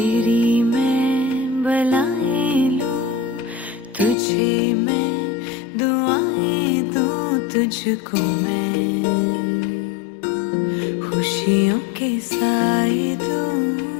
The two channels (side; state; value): right; drops out; at 4.2 s